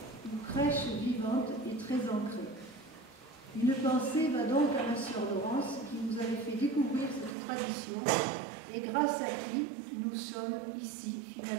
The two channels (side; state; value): left; drops out; at 7.4 s